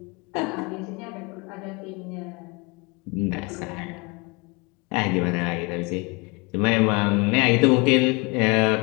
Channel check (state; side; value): quieter; right; 28.5 dB